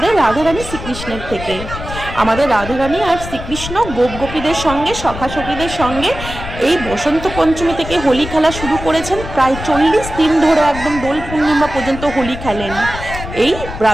রাধারানী শ্রীকৃষ্ণের থেকে। আমাদের রাধারানী আর শ্রীকৃষ্ণ গোপীদের সঙ্গে সখা সখীদের সঙ্গে এই বসন্ত পঞ্চমী থেকে হোলি খেলা শুরু করেছেন। প্রায় 40 দিন ধরে একদম দোল পূর্ণিমা পর্যন্ত হোলি খেলেন। এই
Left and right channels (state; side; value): noise; left; rumble, 10 dB below the sound